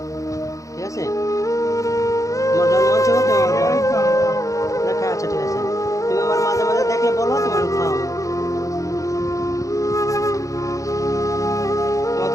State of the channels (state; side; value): late; right; 0.16 ms